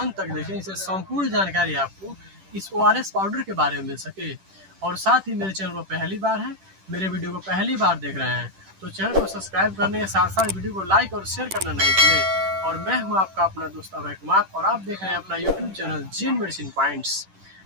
तक देखें, इससे संपूर्ण जानकारी आपको इस ORS पाउडर के बारे में मिल सके। और साथ ही मेरे चैनल को पहली बार है, मेरे वीडियो को पहली बार देख रहे हैं तो चैनल को सब्सक्राइब करने के साथ साथ वीडियो को लाइक और शेयर करना नहीं भूलें। और मैं हूँ आपका अपना दोस्त अभय कुमार और आप देख रहे हैं अपना यूट्यूब चैनल जेन मेडिसिन पॉइंट्स।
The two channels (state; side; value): late; left; 10 ms